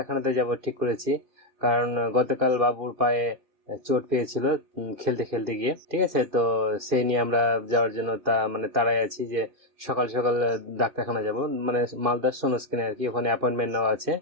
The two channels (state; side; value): late; left; 2.6 ms